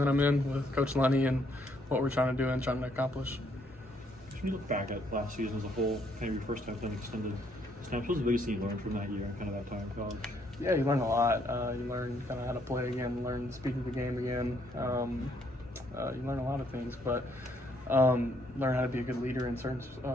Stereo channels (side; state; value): both; normal; correlation 0.70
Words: I'm in, with Coach Lenny and what we're trying to do and trying to accomplish. When you look back at last season as a whole, kind of your first time playing extended snaps, what was the biggest thing you learned from that year and kind of that time in college? Yeah, you learn a lot. You learn kind of how to play again, learn to speak of the game again. You learn a lot of things, but learn how to be a good leader in certain